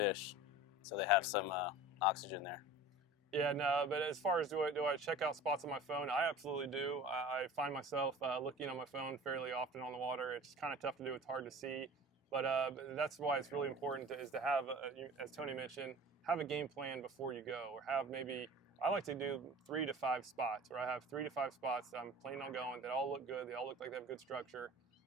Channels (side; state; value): both; normal; correlation 0.40